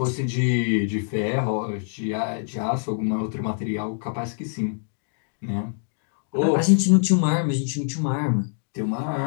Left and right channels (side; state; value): right; silent; 62 dB below the other